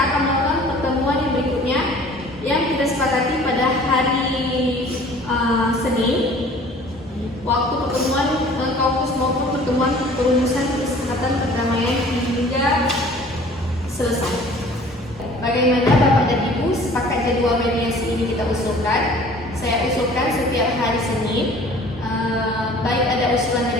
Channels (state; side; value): normal; both; correlation 0.49